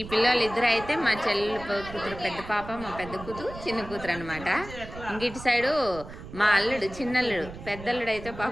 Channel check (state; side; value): noise; right; rumble, 13 dB below the sound